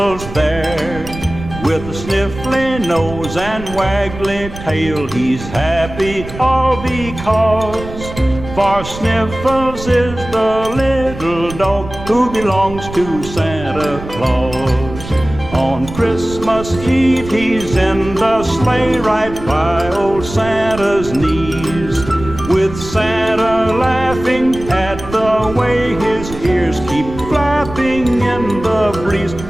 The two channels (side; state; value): right; noise; rumble, 12 dB below the sound